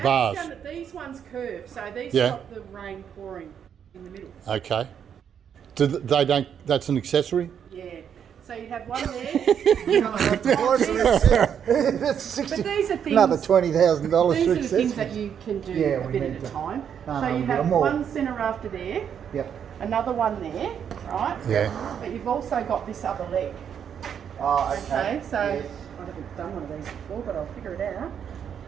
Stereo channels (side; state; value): left; quieter; 8.2 dB